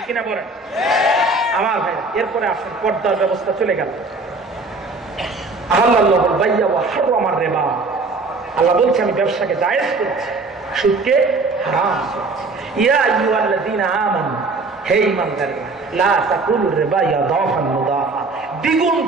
কিনা বলেন আমার ভাই? এরপরে আসেন, পর্দার ব্যবস্থা চলে গেল। আহাল্লাহুল বাইয়া ওয়া হারামার রিবা, আল্লাহ বলছে আমি ব্যবসাকে জায়েজ করছি, সুদকে হারাম করছি। ইয়া আইয়ুহাল্লাযীনা আমানু, হে ঈমানদাররা, লা তাকুলুর রিবা ইয়াদাফান মুদাফা, দ্বিগুণ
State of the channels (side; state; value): left; quieter; 3.6 dB